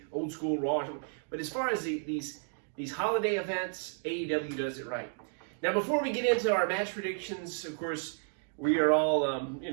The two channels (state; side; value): silent; left; 56 dB below the other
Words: old school Raw or something. But as far as these holiday events, AEW does it right. Now, before we get into our match predictions, of course, we are all,